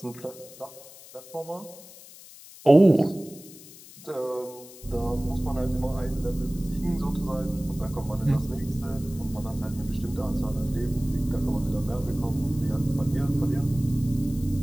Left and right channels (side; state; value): left; noise; hiss, 19 dB below the sound